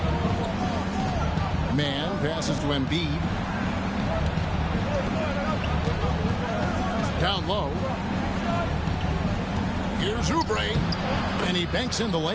Man passes to Embiid. Down low. Here's Oubre, and he banks in the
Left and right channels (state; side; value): identical; both; correlation 1.00